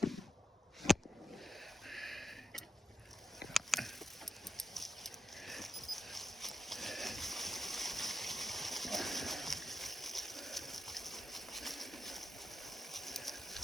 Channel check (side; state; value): both; normal; correlation 0.87